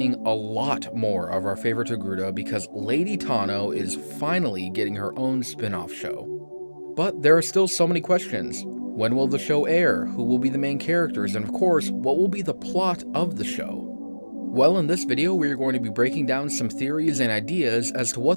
a lot more of our favorite Togruta because Lady Tano is finally getting her own spin-off show. But there are still so many questions. When will the show air? Who will be the main characters? And of course, what will be the plot of the show? Well, in this video, we are going to be breaking down some theories and ideas as to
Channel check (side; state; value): both; inverted; correlation -1.00